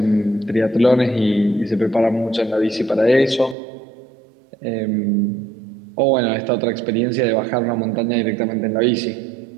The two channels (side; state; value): left; drops out; at 3.6 s